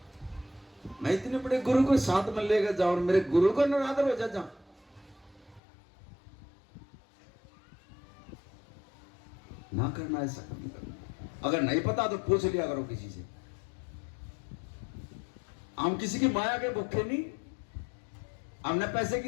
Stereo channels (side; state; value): right; drops out; at 5.6 s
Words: मैं इतने बड़े गुरु को साथ में लेकर जाऊं और मेरे गुरु का निरादर हो जा, ना करना, ऐसा नहीं करना। अगर नहीं पता तो पूछ लिया करो किसी से। हम किसी की माया के भूखे नहीं, हमने पैसे